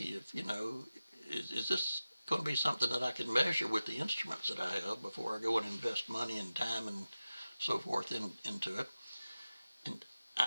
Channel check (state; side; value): inverted; both; correlation -0.94